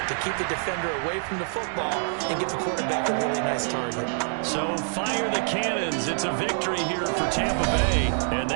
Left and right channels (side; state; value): left; silent; 59 dB below the other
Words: to keep the defender away from the football and give the quarterback a really nice target. So fire the cannons. It's a victory here for Tampa Bay, and